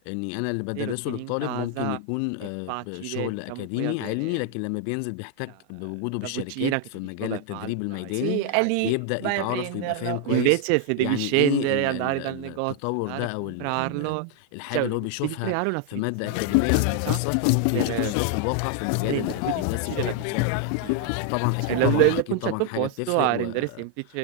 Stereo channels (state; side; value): different; both; correlation 0.00